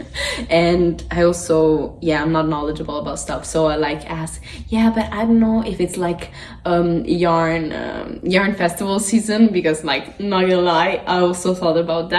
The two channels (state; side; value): identical; both; correlation 1.00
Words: And I also, yeah, I'm not knowledgeable about stuff, so I like ask, yeah, but I don't know if it's like yarn festival season, because like, not gonna lie, I also thought about